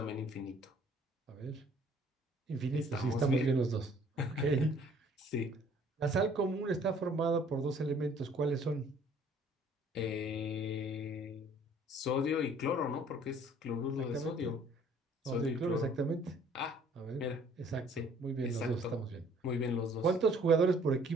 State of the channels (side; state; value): both; normal; correlation 0.57